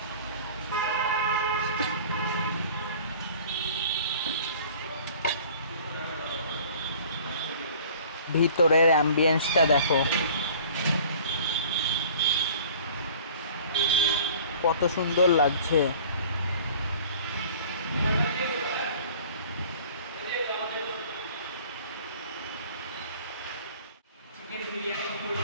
ভিতরের অ্যাম্বিয়েন্সটা দেখো কত সুন্দর লাগছে। Chicken biryani full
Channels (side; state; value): both; inverted; correlation -0.48